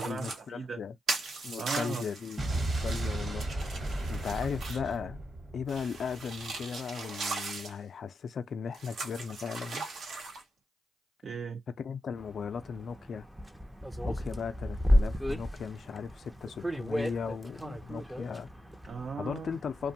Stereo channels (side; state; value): both; normal; correlation 0.87